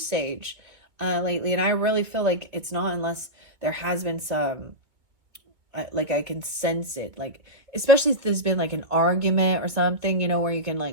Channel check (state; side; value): late; left; 2.2 ms